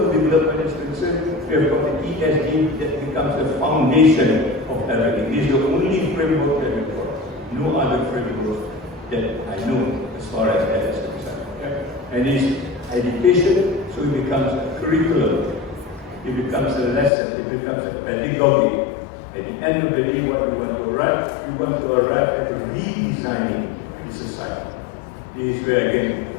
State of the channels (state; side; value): drops out; right; at 17.1 s